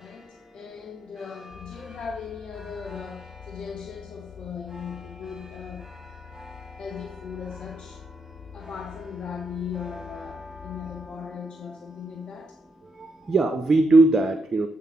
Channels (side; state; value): both; normal; correlation 0.80